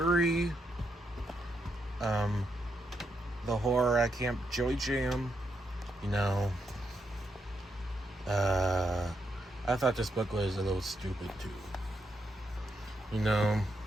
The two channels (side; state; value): both; normal; correlation 0.80